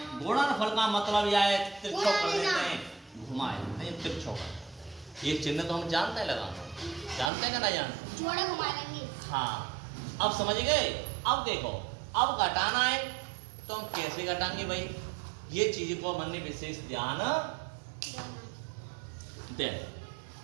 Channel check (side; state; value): left; drops out; at 7.3 s